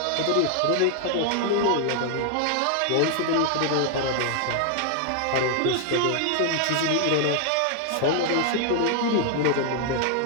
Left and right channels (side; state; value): both; different; correlation 0.00